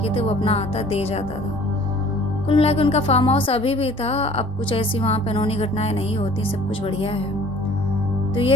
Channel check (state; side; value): normal; both; correlation 0.51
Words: थे वो अपना आता दे जाता था। कुल मिला के उनका फार्म हाउस अभी भी था। अब कुछ ऐसी वहाँ पे अनहोनी घटनाएं नहीं होती, सब कुछ बढ़िया है। तो